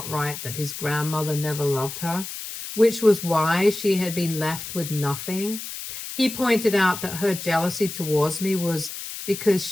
that his grandmother never loved her, which was why she had been left with nothing. He pointed out that her jealousy towards me was because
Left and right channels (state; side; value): noise; left; hiss, 9 dB below the sound